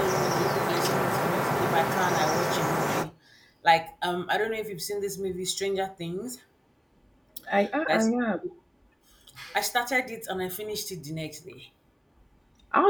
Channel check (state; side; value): identical; both; correlation 1.00